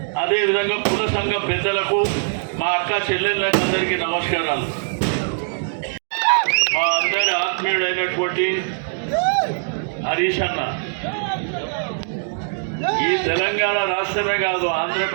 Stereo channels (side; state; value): left; silent; digital silence